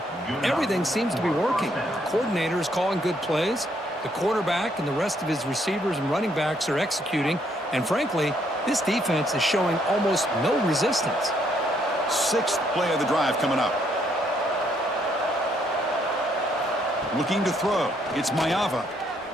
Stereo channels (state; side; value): normal; both; correlation 0.71